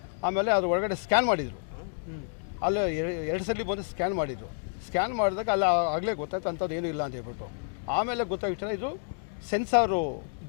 ಆಮೇಲೆ ಅದ್ರ ಒಳಗಡೆ ಸ್ಕ್ಯಾನ್ ಮಾಡಿದರು. ಅಲ್ಲಿ 2 ಸಲ ಬಂದು ಸ್ಕ್ಯಾನ್ ಮಾಡಿದರು. ಸ್ಕ್ಯಾನ್ ಮಾಡಿದಾಗ ಅಲ್ಲಿ ಆಗಲೇ ಗೊತ್ತಾಯ್ತು ಅಂಥದ್ದು ಏನೂ ಇಲ್ಲ ಅಂತ ಹೇಳ್ಬಿಟ್ಟು. ಆಮೇಲೆ ಗೊತ್ತಾಗಿತ್ತು ಇದು ಸೆನ್ಸಾರು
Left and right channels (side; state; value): right; silent; digital silence